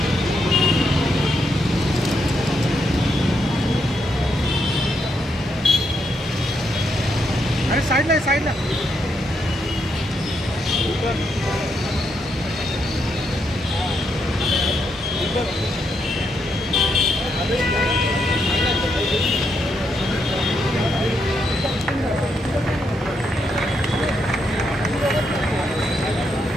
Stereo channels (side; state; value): both; normal; correlation 0.79